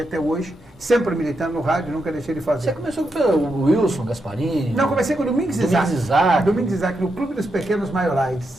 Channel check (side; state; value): both; normal; correlation 0.84